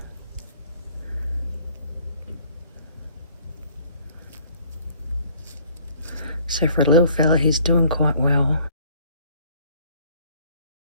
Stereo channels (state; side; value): inverted; both; correlation -0.58